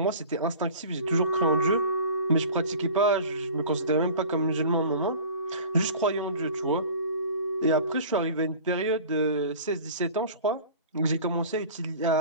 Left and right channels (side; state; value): both; inverted; correlation -0.40